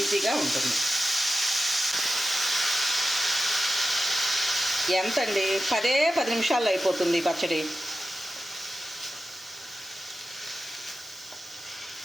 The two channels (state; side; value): normal; both; correlation 0.92